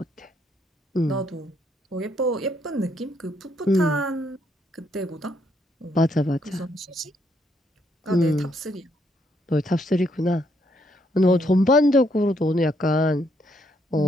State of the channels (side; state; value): both; normal; correlation 0.73